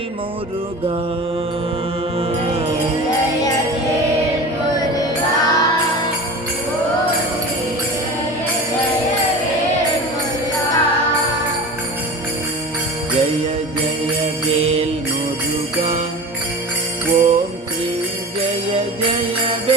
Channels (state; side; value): normal; both; correlation 0.33